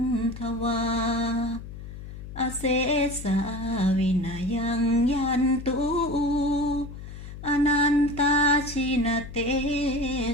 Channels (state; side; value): noise; left; hum, 12 dB below the sound